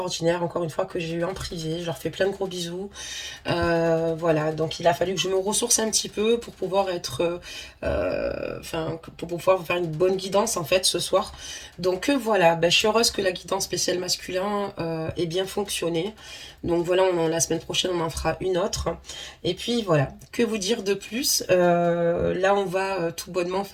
encore une fois, que j'ai eu en privé. Je leur fais plein de gros bisous. Voilà, donc il a fallu que je me ressource un petit peu pour pouvoir être, pour pouvoir vous faire une bonne guidance en fait ce soir. Donc voilà, je suis heureuse que la guidance spéciale masculin ait bien fonctionné. Donc voilà, la semaine prochaine on en fera une autre. Et puis voilà, que vous dire de plus. Là on va tout bonnement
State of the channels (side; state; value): both; identical; correlation 1.00